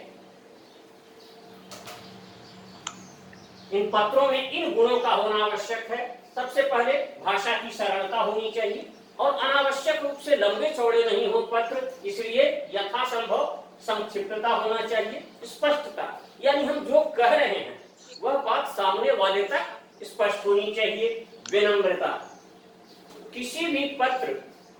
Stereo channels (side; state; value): both; identical; correlation 1.00